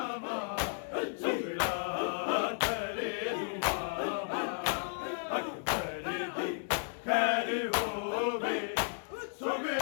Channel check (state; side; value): silent; right; digital silence